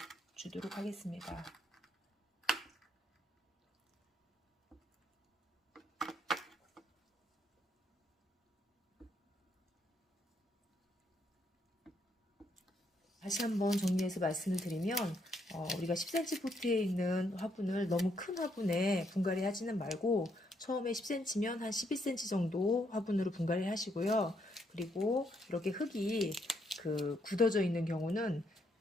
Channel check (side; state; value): both; normal; correlation 0.74